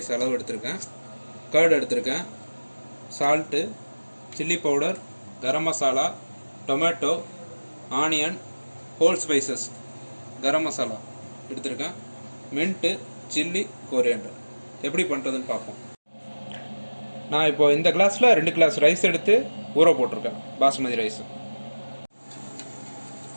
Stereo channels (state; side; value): inverted; both; correlation -1.00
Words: அளவு எடுத்திருக்கேன். கர்டு எடுத்திருக்கேன், salt, chilli powder, garam masala, tomato, onion, whole spices, garam masala எடுத்திருக்கேன், மின்ட்டு, சில்லி, கொரியாண்டர். எப்படி பண்ணுறதுன்னு பார்ப்போம். நான் இப்போ இந்த கிளாஸில் 2 கிளாஸ் ரைஸ் எடுத்து ஊற போட்டிருக்கேன், பாசுமதி ரைஸ்.